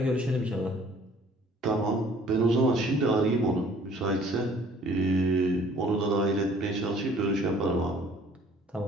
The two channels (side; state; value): both; normal; correlation 0.55